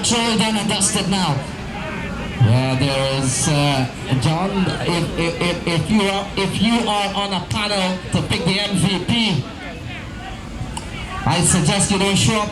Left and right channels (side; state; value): both; identical; correlation 1.00